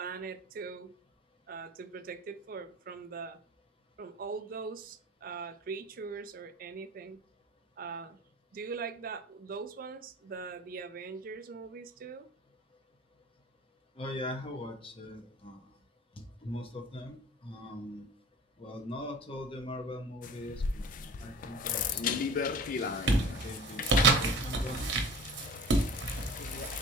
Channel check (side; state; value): both; normal; correlation 0.41